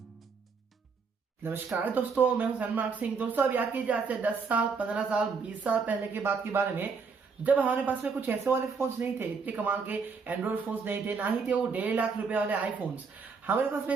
नमस्कार दोस्तों, मैं हूं सनमार्क सिंह। दोस्तों, अब याद कीजिए आज से 10 साल, 15 साल, 20 साल पहले की बात के बारे में, जब हमारे पास में कुछ ऐसे वाले फोन्स नहीं थे, इतने कमाल के एंड्रॉइड फोन्स नहीं थे, ना ही थे वो 1.5 लाख रुपए वाले आईफोन्स। हमारे पास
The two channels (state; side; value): quieter; left; 5.2 dB